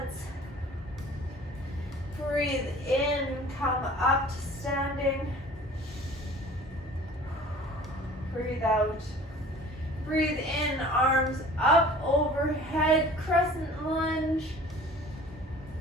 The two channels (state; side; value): normal; both; correlation 0.46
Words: Breathe in, come up to standing. Breathe out. Breathe in, arms up overhead, crescent lunge.